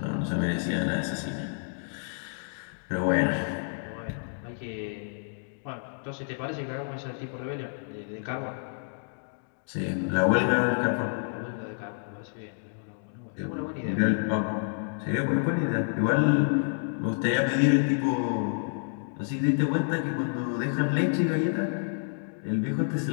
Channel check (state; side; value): silent; right; digital silence